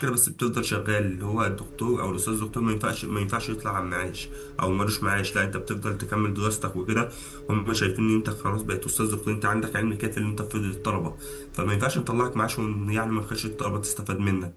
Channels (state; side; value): identical; both; correlation 1.00